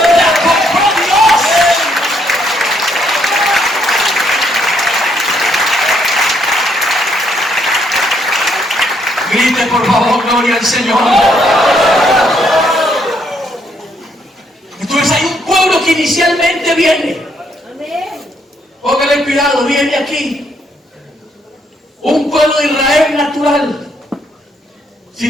compró Dios. Grite por favor, gloria al Señor. Entonces hay un pueblo que inicialmente viene. Póngale cuidado, viene aquí. Un pueblo de Israel natural.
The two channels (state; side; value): normal; both; correlation 0.72